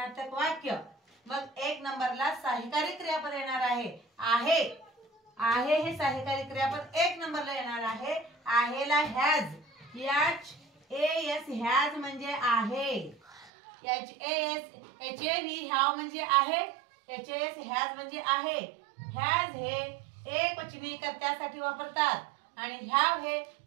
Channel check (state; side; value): drops out; left; at 13.5 s